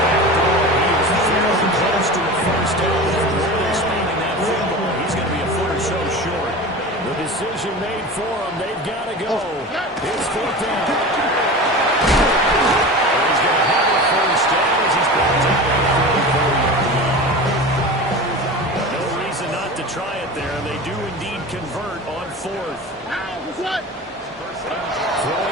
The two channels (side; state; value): both; normal; correlation 0.31